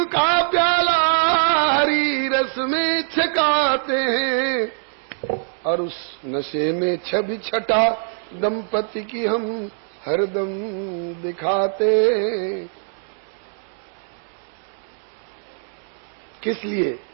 का प्याला हरी रस में छकाते हैं और उस नशे में छवि छटा दंपति की हम हरदम दिखाते हैं। किस लिए?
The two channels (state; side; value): silent; left; digital silence